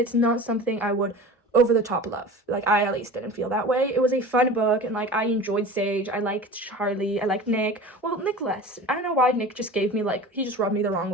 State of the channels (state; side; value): normal; both; correlation 0.36